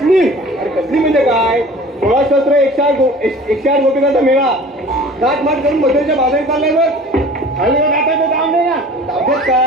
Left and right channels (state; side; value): normal; both; correlation 0.44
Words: अरे कसली म्हणजे काय? 16 108 गोपिकांचा मेळा गाठमाट करून मधुरेच्या बाजारात चाललाय बघ. खाली गाठायचं काम नाही ना. ताब्यात